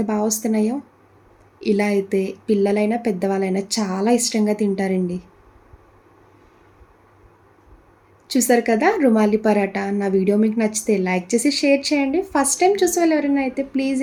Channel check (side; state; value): both; identical; correlation 1.00